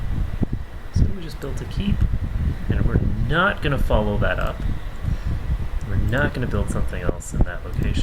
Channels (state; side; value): identical; both; correlation 1.00